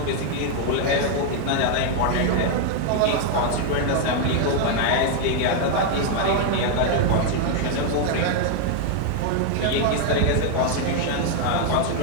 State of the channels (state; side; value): different; both; correlation 0.00